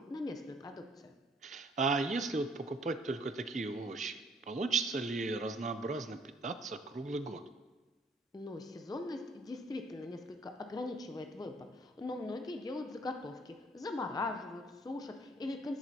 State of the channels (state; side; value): normal; both; correlation 0.63